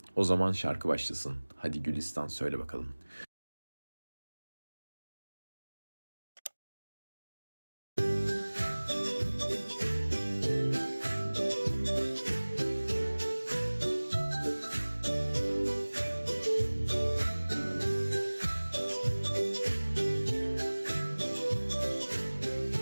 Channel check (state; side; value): inverted; both; correlation -1.00